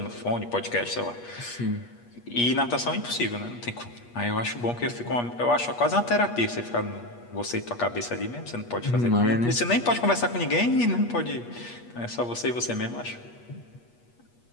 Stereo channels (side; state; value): right; late; 8.4 ms